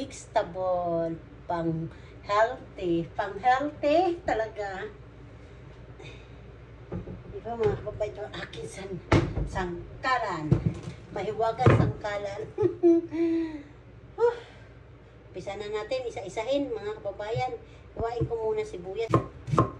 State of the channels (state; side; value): identical; both; correlation 1.00